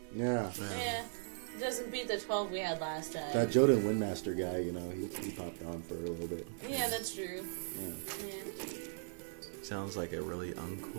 Yeah. Yeah. It doesn't beat the 12 we had last time. That Joden Windmaster guy, he popped on for a little bit. Yeah, that's true. Yeah. Yeah. Sounds like a really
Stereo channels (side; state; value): left; silent; digital silence